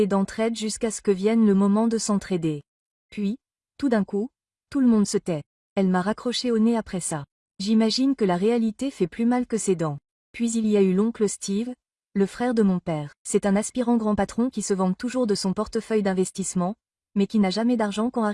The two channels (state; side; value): identical; both; correlation 1.00